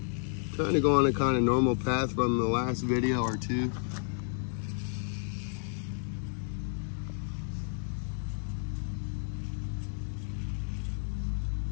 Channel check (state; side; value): silent; right; digital silence